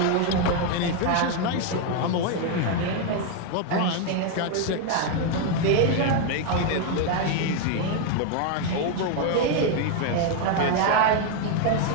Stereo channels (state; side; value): different; both; correlation 0.01